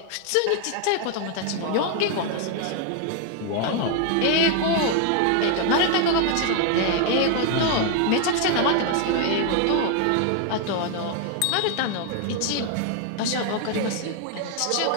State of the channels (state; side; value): different; both; correlation 0.01